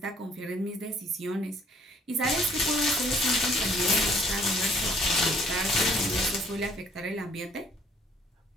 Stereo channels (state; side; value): normal; both; correlation 0.60